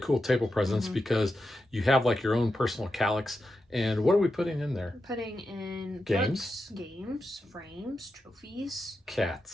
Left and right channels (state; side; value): normal; both; correlation 0.88